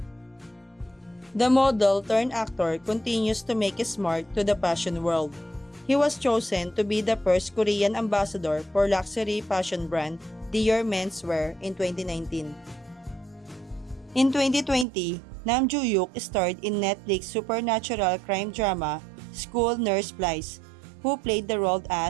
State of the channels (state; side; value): drops out; left; at 14.9 s